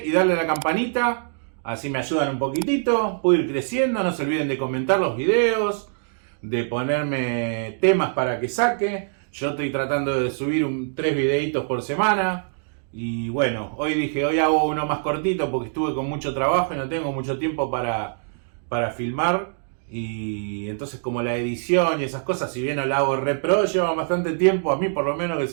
y darle a la campanita. Así me ayudan un poquitito. Puedo ir creciendo. No se olviden de comentar los videos, de ponerme temas para que saque. Yo estoy tratando de subir 3 videitos por semana. Y bueno, hoy hago uno más cortito porque estuve con mucho trabajo y no tengo mucho tiempo para filmar. Y entonces como la edición y esas cosas, si bien no la hago re pro, lleva bastante tiempo. A mí por lo menos que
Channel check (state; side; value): silent; left; digital silence